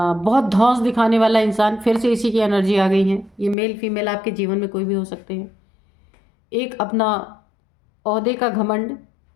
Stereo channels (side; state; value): right; drops out; at 3.6 s